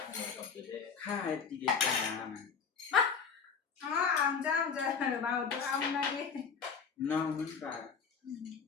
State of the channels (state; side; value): quieter; right; 6.0 dB